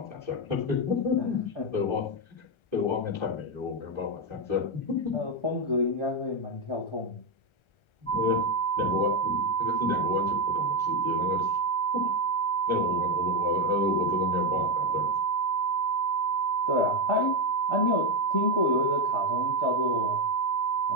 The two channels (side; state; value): right; late; 1.3 ms